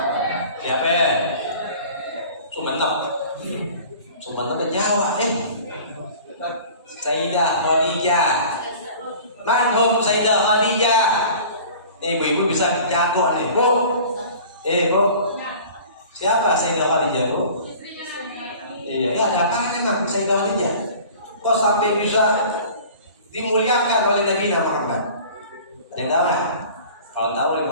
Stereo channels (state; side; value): inverted; both; correlation -0.44